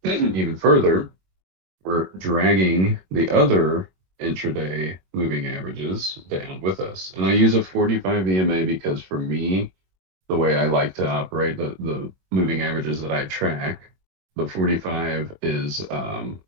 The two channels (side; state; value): left; late; 22 ms